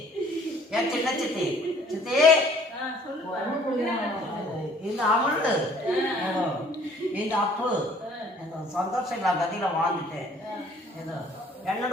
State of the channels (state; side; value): normal; both; correlation 0.56